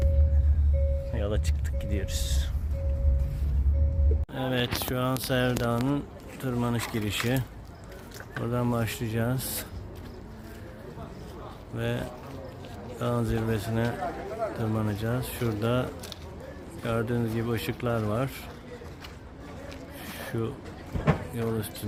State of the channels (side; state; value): both; identical; correlation 1.00